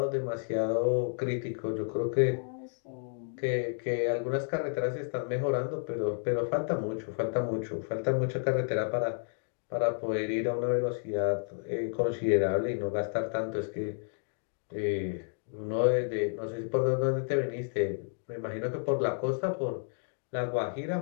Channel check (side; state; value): right; silent; digital silence